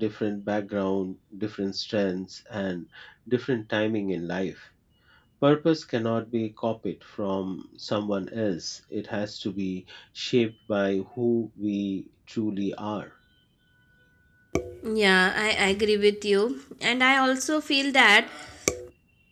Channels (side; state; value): both; identical; correlation 1.00